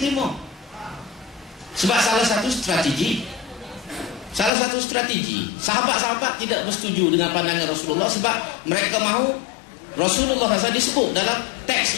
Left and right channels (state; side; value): drops out; right; at 4.5 s